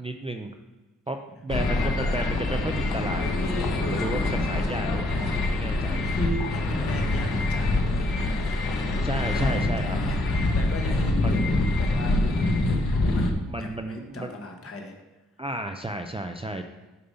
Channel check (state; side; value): normal; both; correlation 0.72